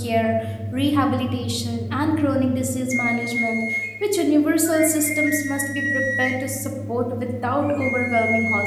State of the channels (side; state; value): both; identical; correlation 1.00